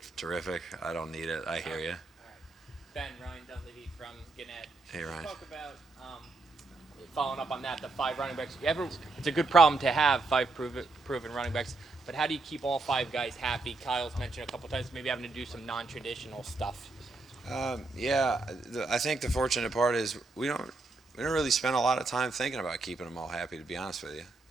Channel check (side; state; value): left; quieter; 3.5 dB